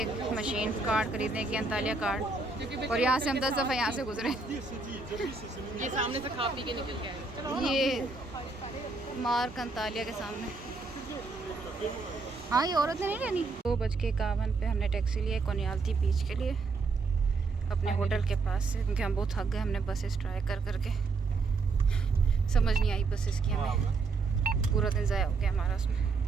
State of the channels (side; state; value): left; quieter; 4.0 dB